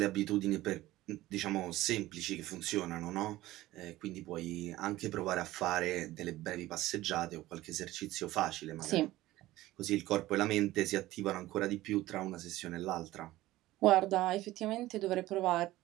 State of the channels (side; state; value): left; quieter; 16.7 dB